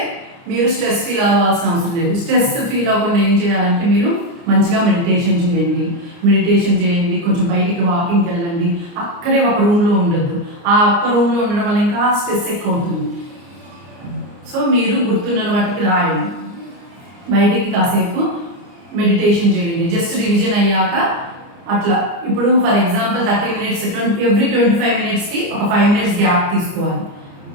మీరు స్ట్రెస్ ఫీల్ అవ్వాల్సిన అవసరం లేదు. స్ట్రెస్ ఫీల్ అవ్వకుండా ఏం చేయాలంటే మీరు మంచిగా మెడిటేషన్ చేయండి. కొంచెం బయటికి వాకింగ్కి వెళ్ళండి. అక్కడే ఒక రూమ్లో ఉండొద్దు. ఆ ఒక్క రూమ్లో ఉండడం వల్ల ఇంకా స్ట్రెస్ ఎక్కువ అవుతుంది. సో మీరు గుర్తున్న వాటికి రాయండి. బయటికి కాసేపు మెడిటేషన్ చేయండి. జస్ట్ రివిజన్ అయ్యాక అట్లా ఇప్పుడు ఫర్ ఎగ్జాంపుల్ 30 minutes ఎవ్రీ 25 minutesకి ఒక 5 minutes గ్యాప్ తీసుకోవాలి.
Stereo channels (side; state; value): left; late; 29 ms